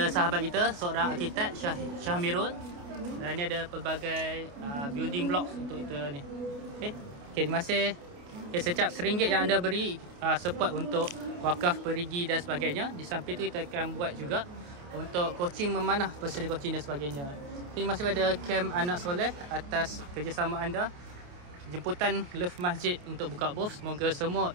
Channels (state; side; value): late; left; 28 ms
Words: sahabat kita, seorang arkitek, Syahmirul. Dan ini ada pelbagai building blocks untuk kita ni. Okay, terima kasih. Okay, setiap RM1 yang anda beri support untuk wakaf perigi dan sebagainya. Di samping itu kita akan buat juga untuk coaching memanah, personal coaching dan sebagainya. Terima kasih kepada Kem Anak Soleh atas kerjasama anda. Jemputan Love Masjid untuk buka booth. Semoga